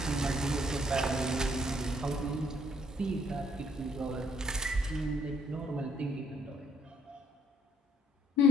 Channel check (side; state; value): both; normal; correlation 0.67